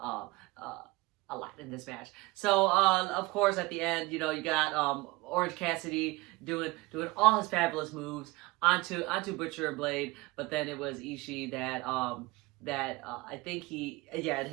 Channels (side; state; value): left; quieter; 21.8 dB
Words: a lot in this match. So, of course, at the end, you know, you got Orange Cassidy doing all his fabulous moves onto Butcher and Blade, but then it was Ishii that I think it